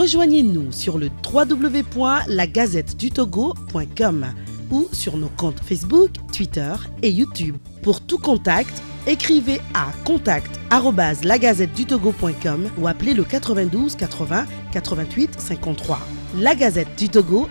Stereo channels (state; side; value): inverted; both; correlation -1.00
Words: sur le www.lagazettedutogo.com ou sur nos comptes Facebook, Twitter et YouTube. Pour tout contact, écrivez à contact@lagazettedutogo.com ou appelez le 92 80 88 53. La Gazette du Togo,